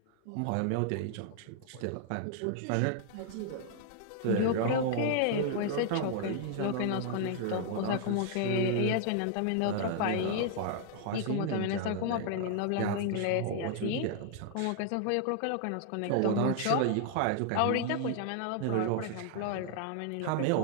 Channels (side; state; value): both; different; correlation 0.00